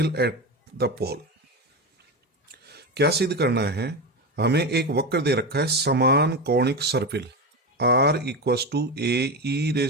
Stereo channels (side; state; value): both; normal; correlation 0.18